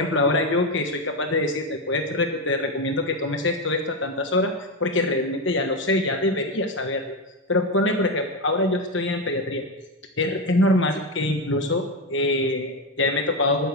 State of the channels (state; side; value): normal; both; correlation 0.11